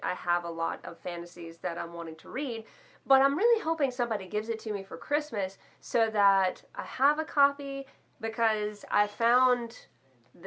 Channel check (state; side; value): identical; both; correlation 1.00